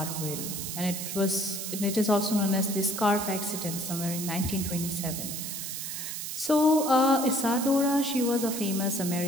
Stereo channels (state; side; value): noise; right; hiss, 5 dB below the sound